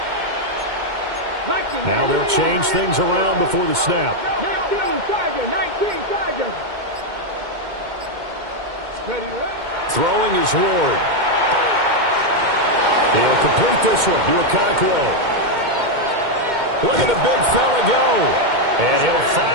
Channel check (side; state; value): left; late; 2.1 ms